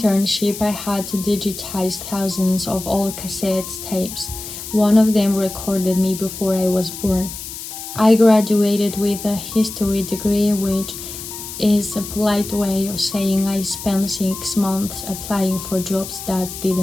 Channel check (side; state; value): left; noise; hiss, 10 dB below the sound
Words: I had to digitize thousands of old cassette tapes. One of them recorded me before I was born. I graduated with a history degree, which is a polite way of saying I spent 6 months applying for jobs that